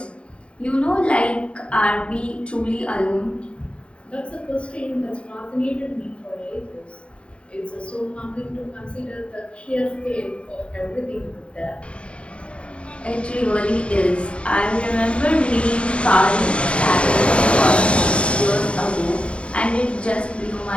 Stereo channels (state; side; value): late; right; 0.059 ms